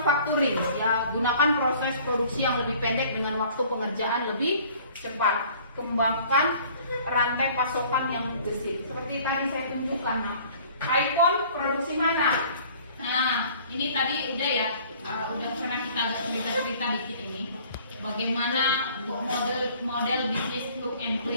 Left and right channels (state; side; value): inverted; both; correlation -0.52